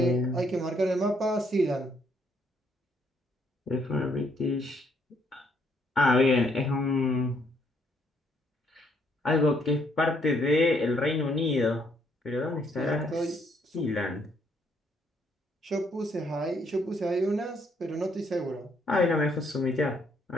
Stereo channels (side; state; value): both; normal; correlation 0.70